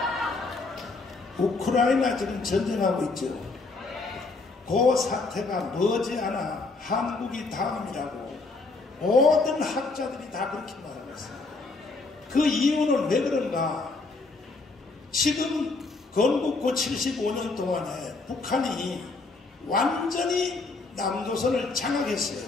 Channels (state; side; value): quieter; right; 3.7 dB